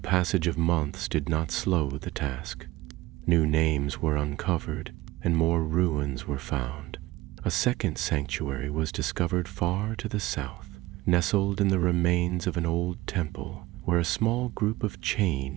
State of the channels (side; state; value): left; quieter; 18.6 dB